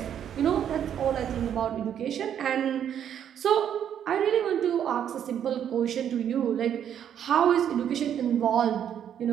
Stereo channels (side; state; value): left; quieter; 9.3 dB